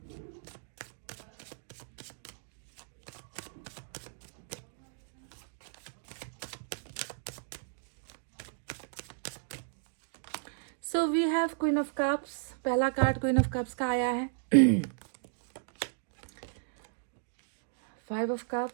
So we have queen of cups. पहला कार्ड क्वीन ऑफ कप्स का आया है। 5 of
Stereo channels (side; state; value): left; silent; digital silence